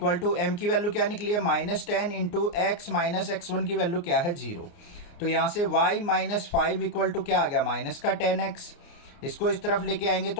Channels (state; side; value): late; right; 29 ms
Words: टू m की वैल्यू क्या निकली है -10 इंटू x माइनस x1 की वैल्यू क्या है 0। तो यहाँ से y - 5 इक्वल टू क्या आ गया, माइनस का 10x। इसको इस तरफ लेके आएंगे